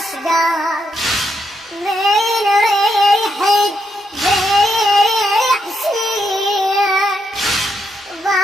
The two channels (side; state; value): both; normal; correlation 0.80